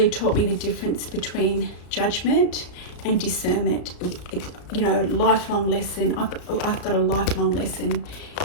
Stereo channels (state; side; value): late; right; 34 ms